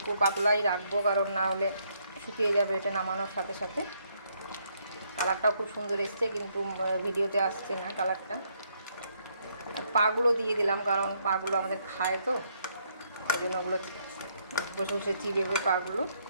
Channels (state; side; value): inverted; both; correlation -0.72